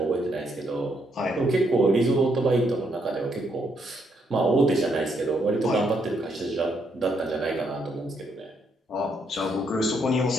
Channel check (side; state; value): both; normal; correlation 0.74